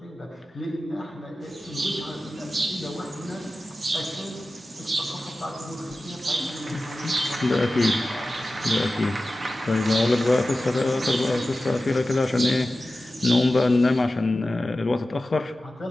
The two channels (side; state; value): both; normal; correlation 0.95